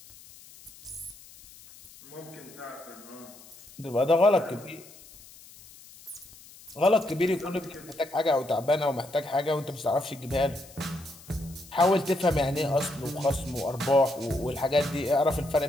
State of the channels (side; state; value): left; noise; hiss, 21 dB below the sound